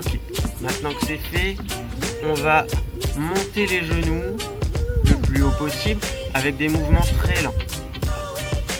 maintenant que c'est fait, on va monter les genoux le plus haut possible avec des mouvements très lents.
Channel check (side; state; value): both; identical; correlation 1.00